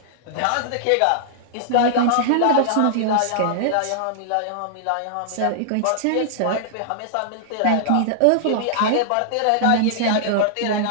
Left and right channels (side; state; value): both; different; correlation -0.01